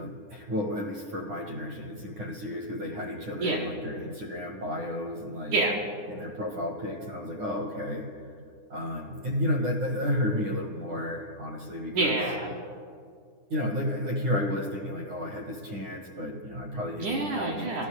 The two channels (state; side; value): late; left; 9.9 ms